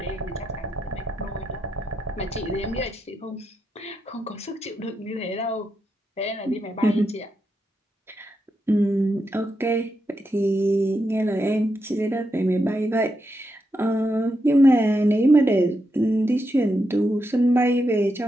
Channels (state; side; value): normal; both; correlation 0.84